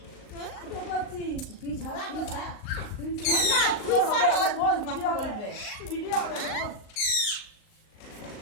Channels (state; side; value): late; right; 38 ms